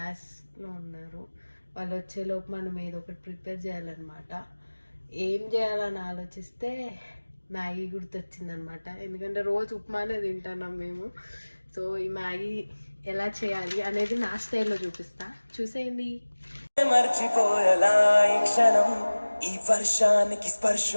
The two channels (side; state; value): both; inverted; correlation -1.00